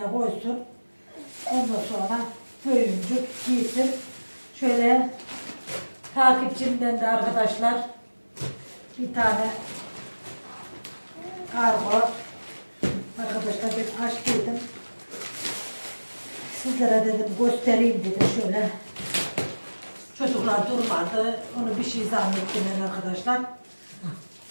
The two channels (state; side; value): inverted; both; correlation -1.00